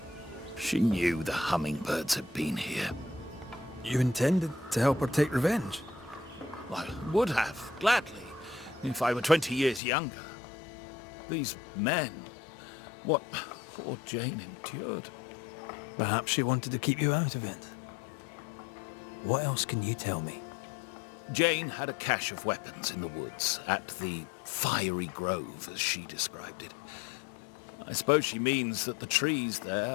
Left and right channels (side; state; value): right; drops out; at 9.8 s